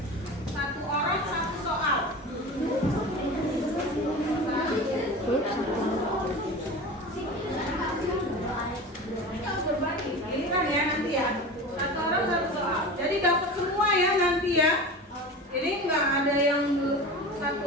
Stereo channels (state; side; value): normal; both; correlation 0.31